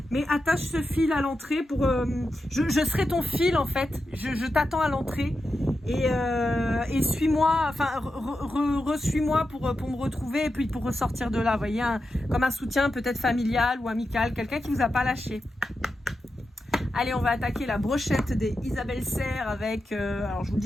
mais attache ce fil à l'entrée pour... je serai ton fil, en fait. Je t'attends à l'entrée et suis-moi, enfin, re-suis-moi pour me retrouver et puis pour ressortir de là. Vous voyez, comme un soutien peut-être familial ou amical, quelqu'un qui vous a pas lâché. Allez, on va attaquer la brochette des Isabelle Serre avec, alors je vous le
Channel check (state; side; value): normal; both; correlation 0.89